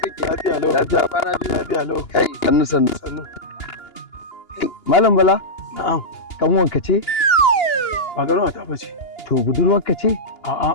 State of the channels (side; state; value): right; late; 2.9 ms